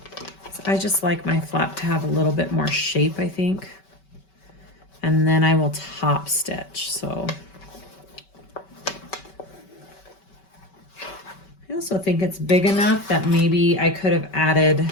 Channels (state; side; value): late; right; 5.2 ms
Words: So I just like my flap to have a little bit more shape, I think. And then I will top stitch, so. I also think it's big enough that maybe I could have added